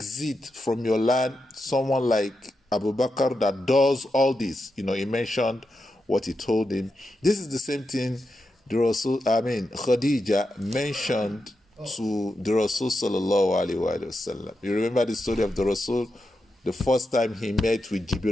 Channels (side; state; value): both; normal; correlation 0.87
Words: from your land someone like Abu Bakr that does all this? He mentioned what he told him. This is the same thing Khadija mentioned to the Rasul sallallahu alaihi wasallam. You remember the story of the Rasul? The first time he met with